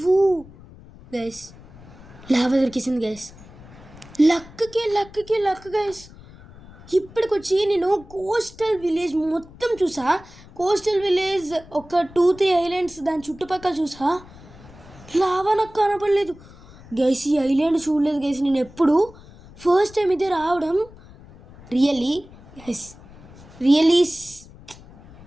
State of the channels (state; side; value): noise; left; rumble, 21 dB below the sound